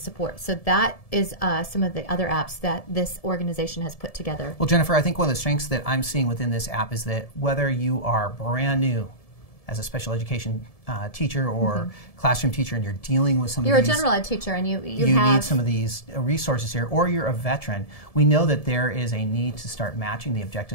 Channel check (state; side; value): late; right; 1.7 ms